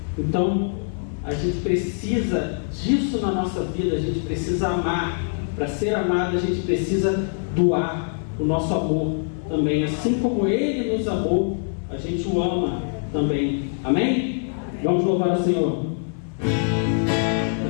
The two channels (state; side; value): silent; right; 55 dB below the other